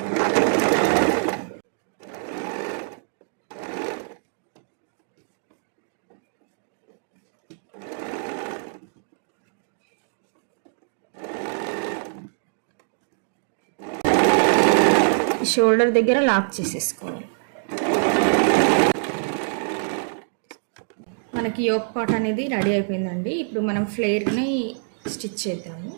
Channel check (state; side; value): silent; left; digital silence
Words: షోల్డర్ దగ్గర లాక్ చేసేసుకోవాలి. మనకి యోక్ పార్ట్ అనేది రెడీ అయిపోయిందండి. ఇప్పుడు మనం ఫ్లేర్ని స్టిచ్ చేద్దాము.